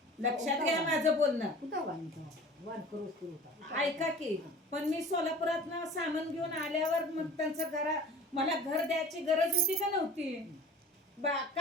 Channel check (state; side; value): normal; both; correlation 0.43